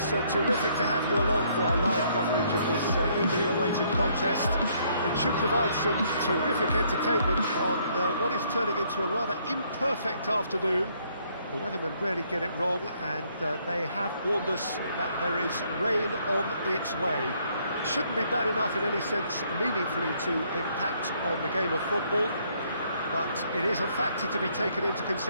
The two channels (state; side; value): inverted; both; correlation -0.67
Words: terrific to have you along for our live coverage of this eagerly awaited contest. It should provide some terrific entertainment on what is turning into a rather imperfect afternoon. The weathermen rarely get it wrong, and they have warned us that there is rain on its way. It shouldn't be bad enough in any sense meaningfully to impact on the game of football, but it is a factor to be taken into